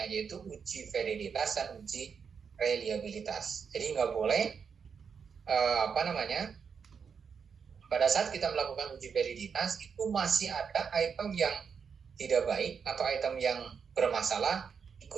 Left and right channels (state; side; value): quieter; left; 6.4 dB